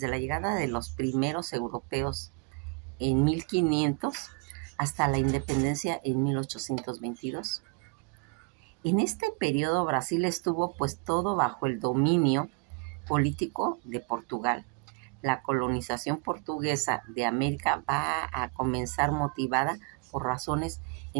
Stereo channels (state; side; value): quieter; left; 30.6 dB